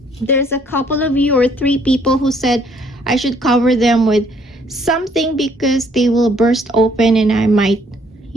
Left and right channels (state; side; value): normal; both; correlation 0.64